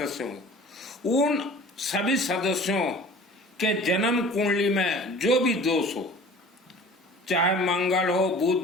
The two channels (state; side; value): normal; both; correlation 0.45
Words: हों, उन सभी सदस्यों के जन्म कुंडली में जो भी दोष हो, चाहे मंगल हो,